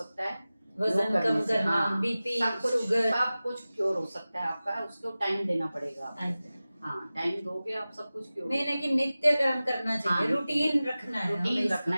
है, वजन कम करना, हाँ, बीपी, शुगर, सब कुछ क्योर हो सकता है आपका। उसको टाइम देना पड़ेगा आपको। हाँ, टाइम दोगे आप, सब कुछ क्योर। नहीं, लेकिन नित्य कर्म करना चाहिए। रूटीन रखना है, रूटीन रखना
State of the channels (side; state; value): both; inverted; correlation -0.97